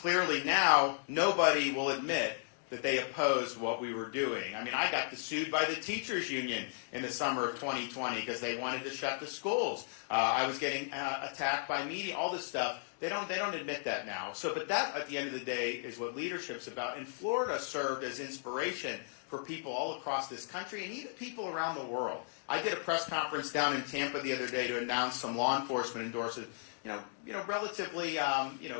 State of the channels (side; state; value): right; silent; digital silence